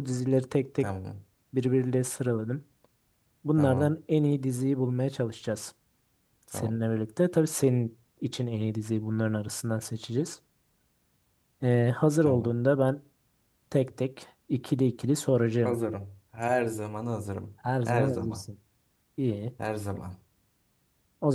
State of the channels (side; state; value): both; identical; correlation 1.00